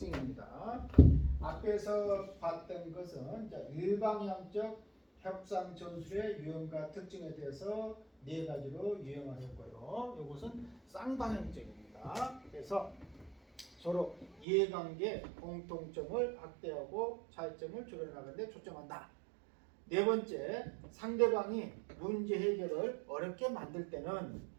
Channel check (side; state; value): left; drops out; at 14.5 s